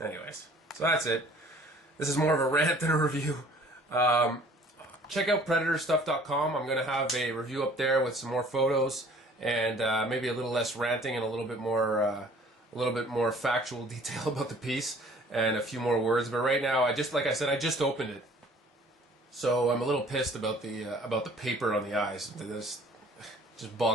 Anyways, so that's it. This is more of a rant than a review. Check out PredatorStuff.com. I'm going to have a review up there with some more photos and maybe a little less ranting and a little bit more factual detail about the piece and a few more words. But right now, like I said, I just opened it, so I'm a little pissed about the paper on the eyes. This just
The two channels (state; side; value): normal; both; correlation 0.53